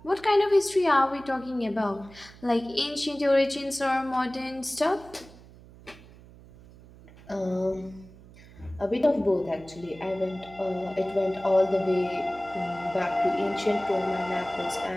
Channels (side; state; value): right; noise; hum, 21 dB below the sound